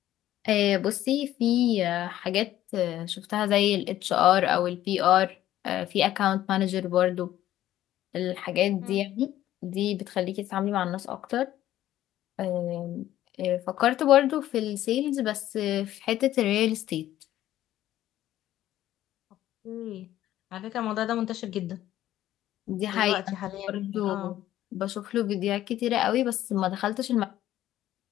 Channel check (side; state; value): right; quieter; 13.3 dB